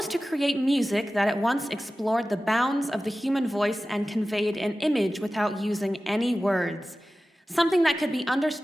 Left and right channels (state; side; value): normal; both; correlation 0.95